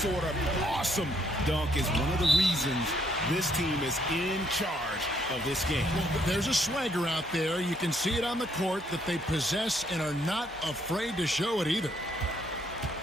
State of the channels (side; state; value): both; normal; correlation 0.70